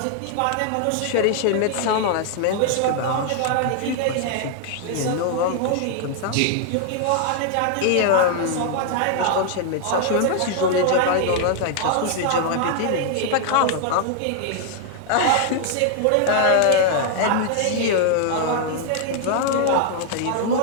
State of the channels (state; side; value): different; both; correlation 0.00